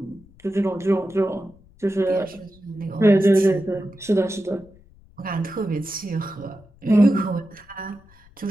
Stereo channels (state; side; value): noise; left; rumble, 27 dB below the sound